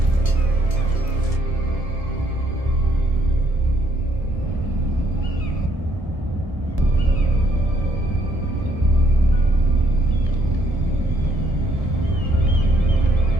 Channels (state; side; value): late; left; 1.8 ms